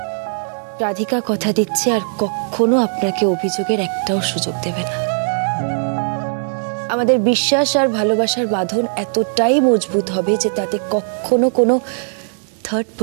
রাধিকা কথা দিচ্ছে, আর কখনো আপনাকে অভিযোগের একটাও সুযোগ দেবে না। আমাদের বিশ্বাস আর ভালোবাসার বাঁধন এতটাই মজবুত হবে যে তাতে কখনো কোনো থার্ড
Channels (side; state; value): left; silent; 67 dB below the other